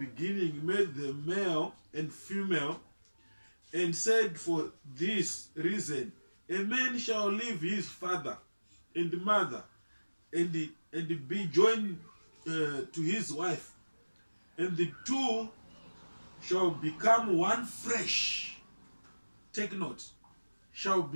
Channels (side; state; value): both; inverted; correlation -1.00